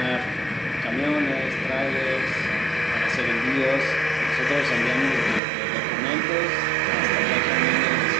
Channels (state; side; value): drops out; left; at 5.4 s